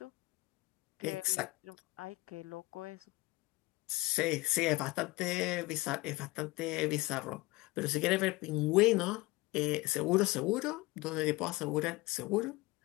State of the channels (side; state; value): right; quieter; 21.3 dB